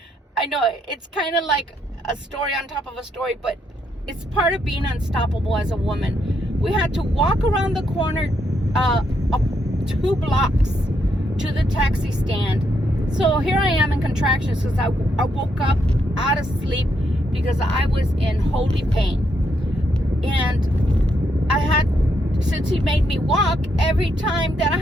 I know it's kind of like a story on top of a story, but it's part of being unstoppable as a woman. We had to walk around the corner 2 blocks to the taxi stand. So here I am in contractions because I woke up out of sleep because I was in holy pain. And since he made me walk, every time that I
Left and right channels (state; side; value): normal; both; correlation 0.77